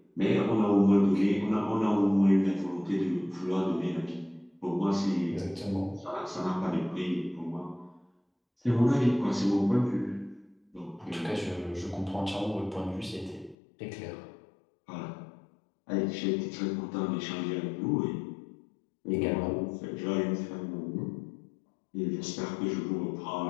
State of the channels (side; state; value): right; drops out; at 13.6 s